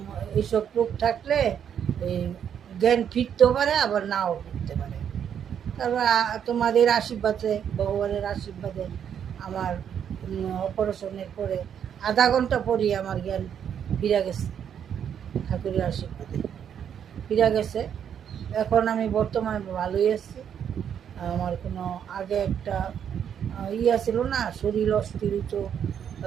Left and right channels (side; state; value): left; quieter; 8.6 dB